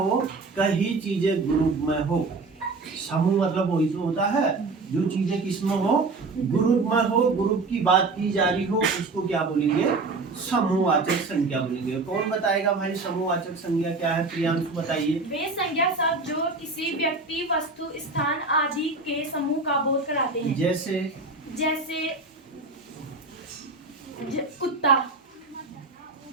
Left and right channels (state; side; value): quieter; left; 3.7 dB